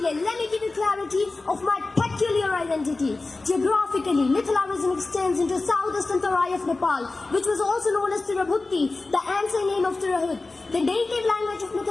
let me give you clarity of my peculiar identity. Geographically, Mithila region extends into southeastern Tarai of Nepal, which was also known as Tirabhuti, the ancient name of Tirahut. The native language of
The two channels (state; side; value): quieter; right; 3.4 dB